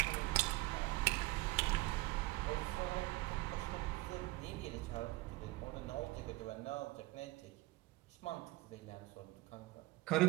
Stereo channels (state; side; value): quieter; left; 19.8 dB